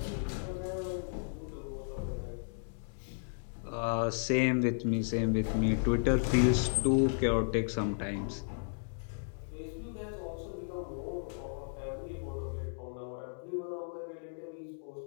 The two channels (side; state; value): right; silent; digital silence